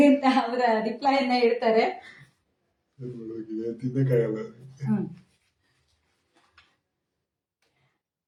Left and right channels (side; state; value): both; identical; correlation 1.00